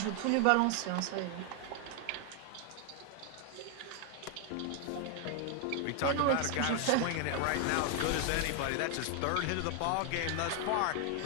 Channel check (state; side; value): different; both; correlation 0.00